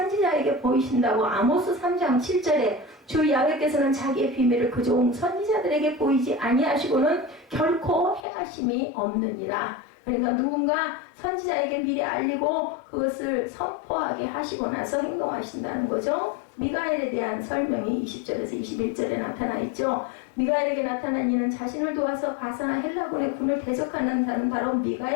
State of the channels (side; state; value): right; drops out; at 8.2 s